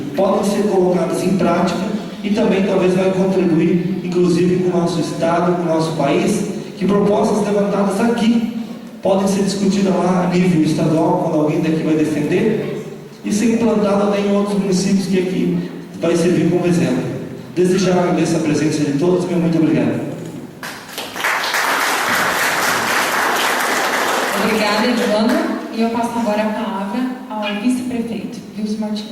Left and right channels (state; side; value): identical; both; correlation 1.00